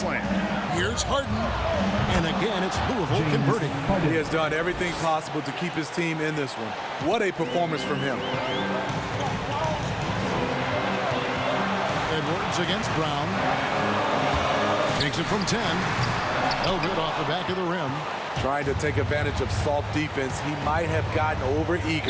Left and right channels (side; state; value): both; identical; correlation 1.00